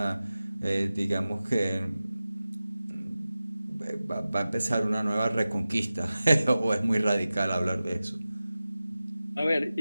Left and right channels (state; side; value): inverted; both; correlation -0.95